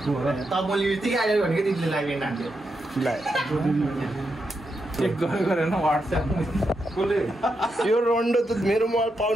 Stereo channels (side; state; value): both; normal; correlation 0.84